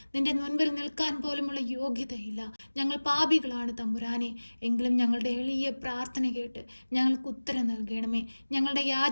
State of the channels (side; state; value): both; inverted; correlation -1.00